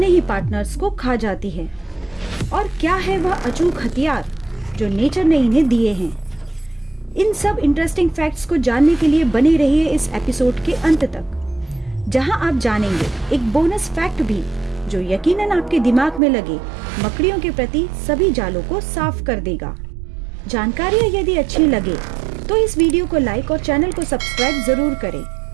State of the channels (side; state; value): left; drops out; at 16.2 s